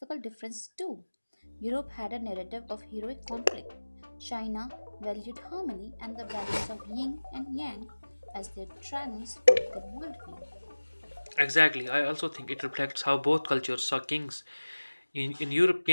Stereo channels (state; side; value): inverted; both; correlation -1.00